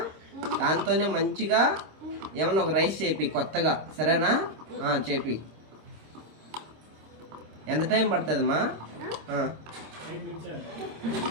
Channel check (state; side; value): late; left; 26 ms